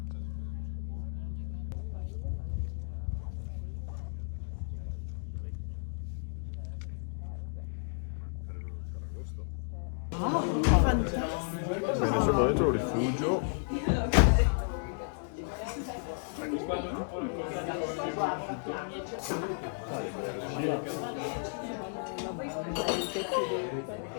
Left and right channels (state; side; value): silent; right; digital silence